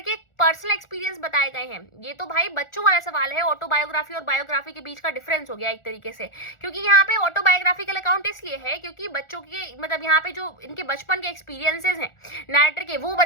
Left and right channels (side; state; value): right; late; 1.4 ms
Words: के पर्सनल एक्सपीरियंस बताए गए हैं। ये तो भाई बच्चों वाला सवाल है, ऑटोबायोग्राफी और बायोग्राफी के बीच का डिफरेंस हो गया एक तरीके से, क्योंकि यहाँ पे ऑटोबायोग्राफिकल अकाउंट इसलिए है क्योंकि बच्चों के मतलब यहाँ पे जो इनके बचपन के एक्सपीरियंसेस हैं नैरेटर के वो